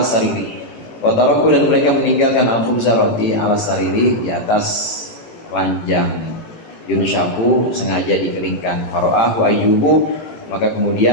sariri, wa taraku, dan mereka meninggalkan al khubza roti ala sariri, di atas ranjang, yunshaku sengaja dikeringkan. Fara'ahu Ayyubu, maka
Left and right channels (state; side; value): late; right; 18 ms